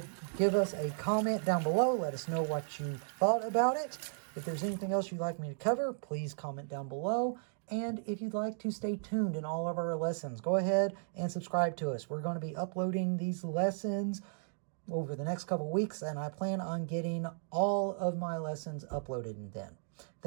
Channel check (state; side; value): silent; left; digital silence